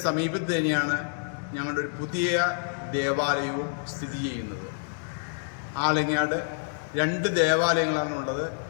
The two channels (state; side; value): silent; right; digital silence